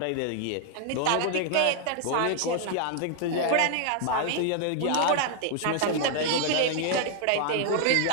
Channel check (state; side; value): different; both; correlation 0.00